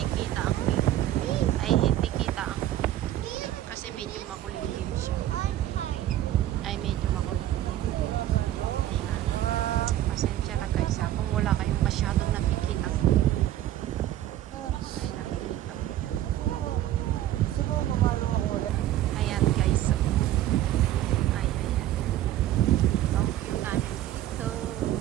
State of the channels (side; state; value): left; quieter; 13.1 dB